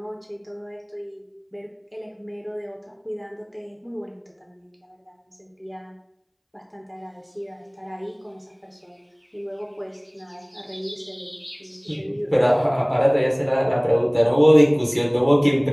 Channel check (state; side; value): identical; both; correlation 1.00